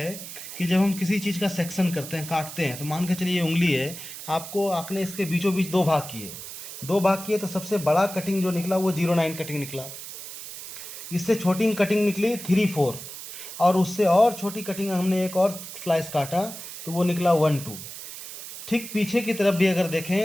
कि जब हम किसी चीज़ का सेक्शन करते हैं, काटते हैं, तो मान के चलिए ये उंगली है, आपने इसके बीचों बीच 2 भाग किए, 2 भाग किए, तो सबसे बड़ा कटिंग जो निकला वो 09 कटिंग निकला। इससे छोटी कटिंग निकली 3-4, और उससे और छोटी कटिंग हमने एक और स्लाइस काटा तो वो निकला 1-2। ठीक पीछे की तरफ भी अगर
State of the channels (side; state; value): right; noise; hiss, 11 dB below the sound